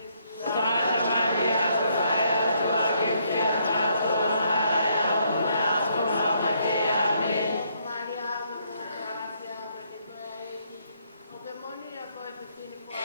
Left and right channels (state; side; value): inverted; both; correlation -0.71